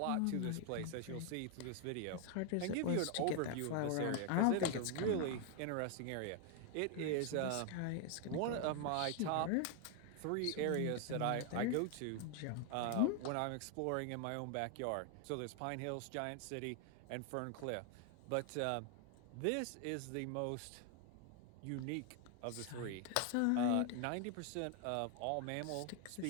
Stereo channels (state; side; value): different; both; correlation 0.00